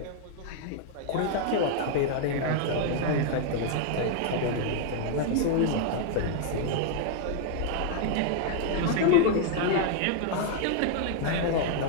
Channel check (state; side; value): different; both; correlation 0.00